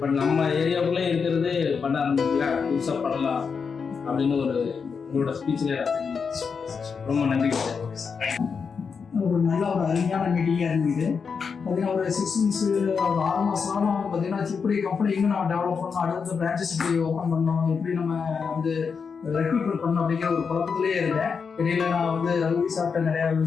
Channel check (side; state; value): right; quieter; 5.8 dB